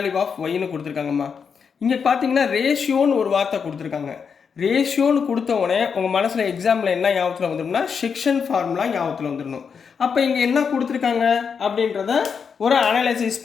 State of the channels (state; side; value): quieter; right; 6.3 dB